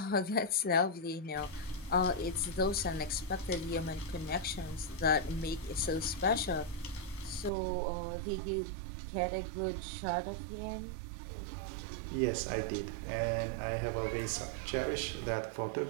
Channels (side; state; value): left; drops out; at 7.5 s